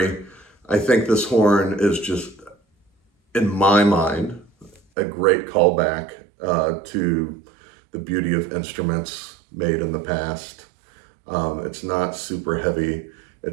I think this horn is just, in my mind, a great callback to the beauty of instruments made in the past. It's not super heavy.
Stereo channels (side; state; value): left; drops out; at 4.8 s